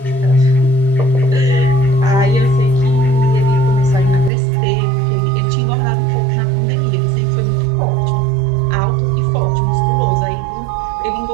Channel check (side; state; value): left; drops out; at 4.3 s